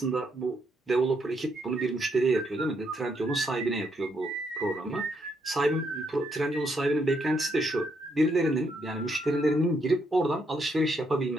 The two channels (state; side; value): normal; both; correlation 0.76